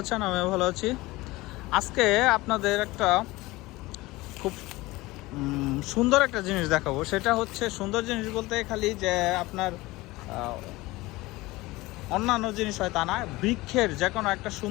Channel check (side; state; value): right; quieter; 20.3 dB